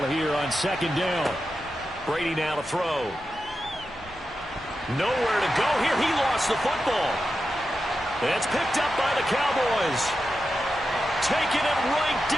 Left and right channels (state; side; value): normal; both; correlation 0.90